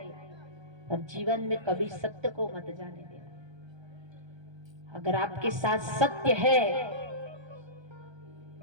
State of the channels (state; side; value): late; left; 1.3 ms